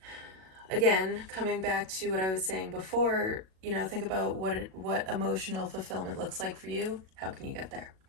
Again, coming back to what I was saying before, think about what emotional fulfillment looks like for you. How can you get there?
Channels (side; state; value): left; late; 37 ms